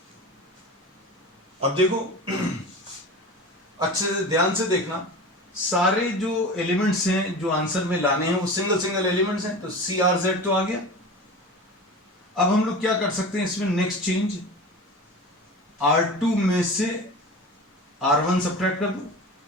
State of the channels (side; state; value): both; normal; correlation 0.32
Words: अब देखो अच्छे से ध्यान से देखना, सारे जो एलिमेंट्स हैं जो आंसर में लाने हैं वो सिंगल सिंगल एलिमेंट्स हैं। तो सी आर जेड तो आ गया। अब हम लोग क्या कर सकते हैं इसमें, नेक्स्ट चेंज, R2 में से R1 सब्ट्रैक्ट कर दो,